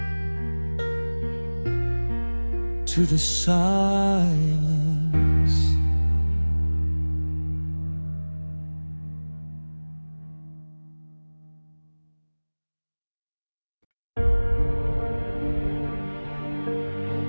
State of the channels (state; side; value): inverted; both; correlation -1.00